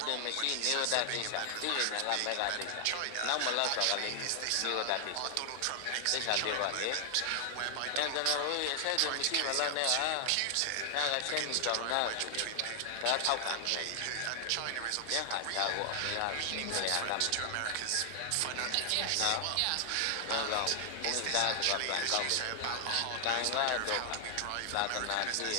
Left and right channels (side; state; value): both; different; correlation 0.00